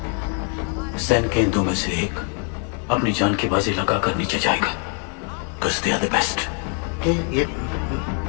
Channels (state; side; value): quieter; right; 38.2 dB